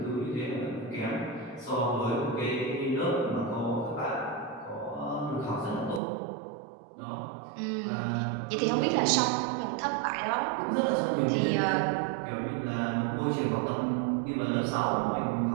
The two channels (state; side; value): drops out; left; at 6.0 s